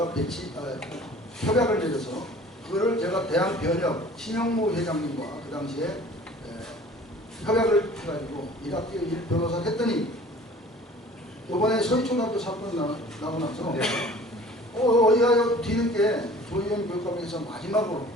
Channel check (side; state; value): both; normal; correlation 0.48